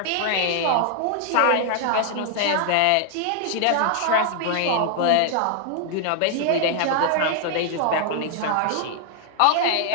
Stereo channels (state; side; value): different; both; correlation 0.00